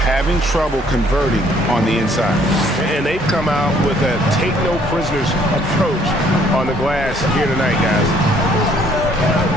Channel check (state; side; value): noise; right; hum, 15 dB below the sound